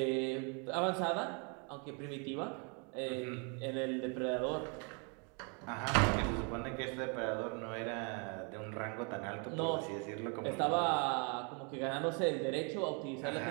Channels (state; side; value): quieter; left; 35.7 dB